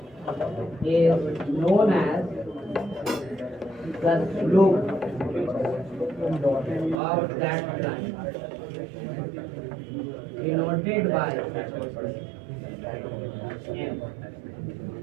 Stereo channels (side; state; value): left; drops out; at 7.0 s